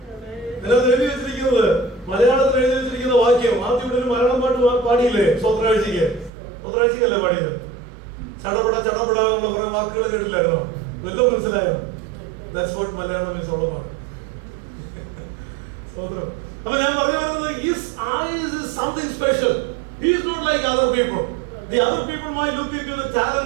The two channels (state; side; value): drops out; left; at 6.3 s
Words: അതിനകത്ത് എഴുതി വെച്ചിരിക്കുന്നത്, മലയാളത്തിൽ എഴുതി വെച്ചിരിക്കുന്ന വാക്യം ആദ്യം ഇവിടെ ഒരു മലയാളം പാട്ട് പാടിയില്ലേ? സ്വത്രാഴ്ചക്കല്ലേ പാടിയത്? ചടപട എന്നുള്ള കുറെ വാക്കുകൾ കേട്ടില്ലായിരുന്നോ? വല്ലതും മനസ്സിലായോ? That's what Malayalam is all about. അപ്പൊ ഞാൻ പറഞ്ഞു വരുന്നത്, his eyes is something special. He is not like other people. The other people might look into the